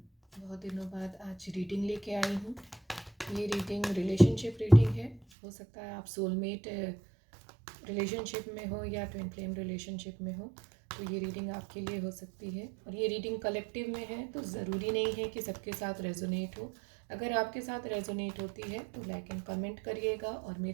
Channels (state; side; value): drops out; left; at 5.2 s